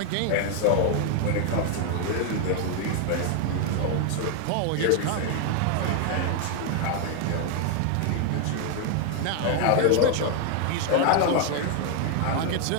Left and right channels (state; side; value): different; both; correlation 0.00